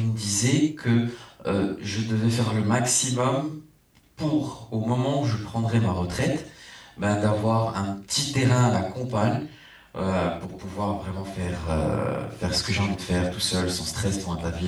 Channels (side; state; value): both; identical; correlation 1.00